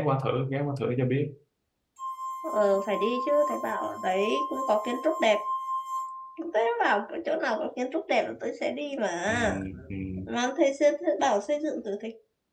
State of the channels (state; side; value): identical; both; correlation 1.00